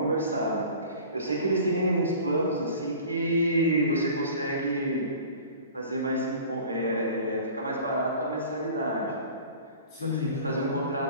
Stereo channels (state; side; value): inverted; both; correlation -0.43